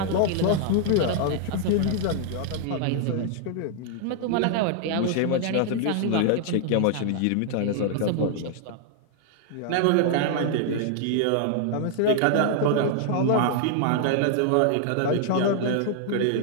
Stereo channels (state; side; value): different; both; correlation -0.01